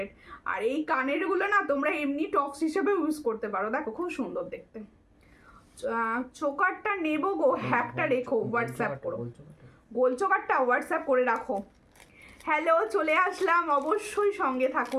আর এই কানেরগুলো না তোমরা এমনি টপস হিসেবে ইউজ করতে পারো। দেখো খুব সুন্দর দেখতে। চোকারটা নেবো গো, হ্যাকটা রেখো, হোয়াটসঅ্যাপ করো। গোল চোকারটা হোয়াটসঅ্যাপ করে রাখো। হ্যালো, চলে আসলাম, অবশ্যই সঙ্গে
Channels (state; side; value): identical; both; correlation 1.00